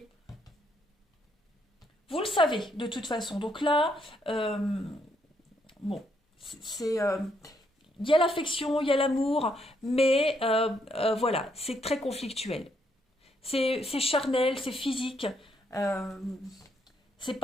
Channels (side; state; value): both; normal; correlation 0.74